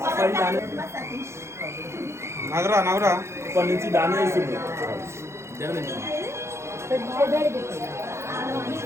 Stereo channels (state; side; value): late; left; 0.13 ms